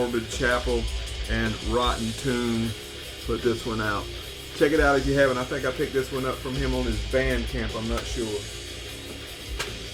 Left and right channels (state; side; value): identical; both; correlation 1.00